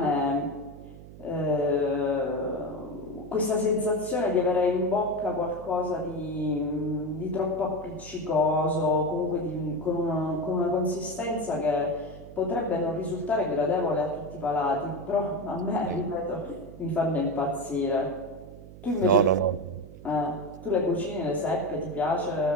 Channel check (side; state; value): right; noise; hum, 16 dB below the sound